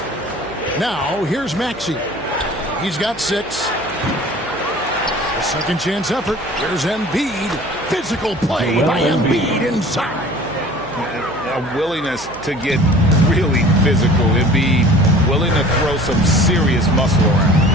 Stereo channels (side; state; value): right; noise; hum, 21 dB below the sound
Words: Now, here's Maxey. He's got 6. A second chance effort. Here's Embiid. Physical play by Embiid inside. A willingness to get really physical. Embiid willing to throw some serious muscle around.